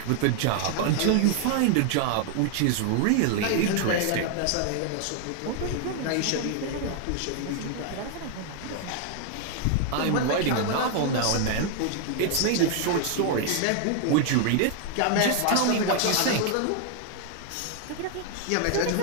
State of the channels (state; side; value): different; both; correlation 0.00